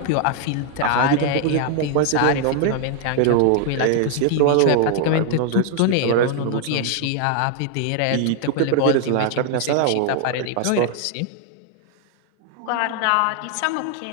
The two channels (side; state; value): both; different; correlation 0.00